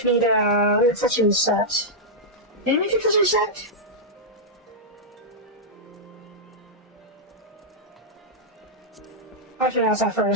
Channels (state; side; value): normal; both; correlation -0.06